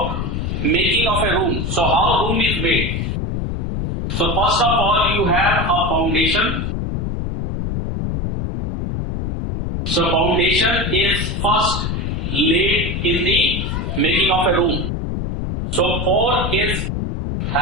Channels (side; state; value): left; noise; rumble, 2 dB below the sound